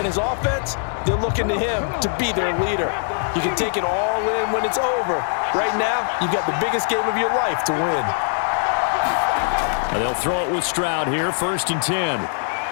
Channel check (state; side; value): silent; right; digital silence